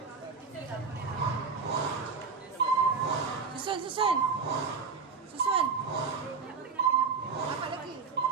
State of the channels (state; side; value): quieter; left; 5.2 dB